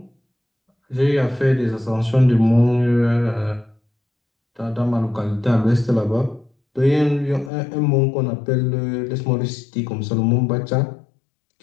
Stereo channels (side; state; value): right; drops out; at 7.5 s